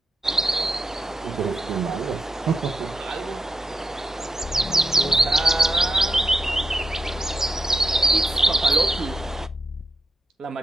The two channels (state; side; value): normal; both; correlation 0.85